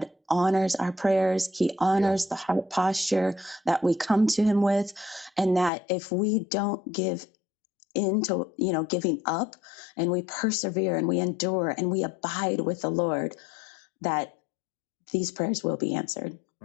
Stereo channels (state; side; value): drops out; right; at 5.7 s